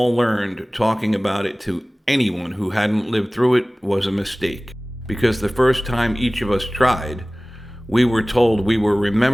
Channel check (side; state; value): both; normal; correlation 0.98